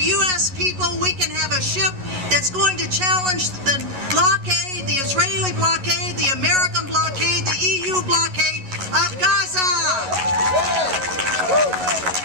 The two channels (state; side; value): late; left; 11 ms